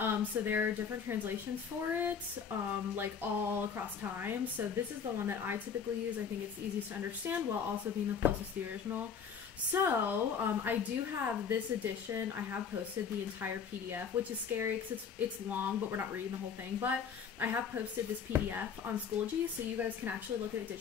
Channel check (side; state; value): right; quieter; 6.8 dB